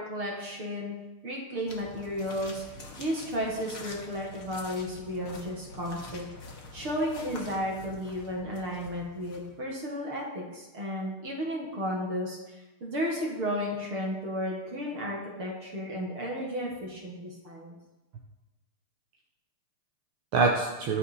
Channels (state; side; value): late; left; 6.6 ms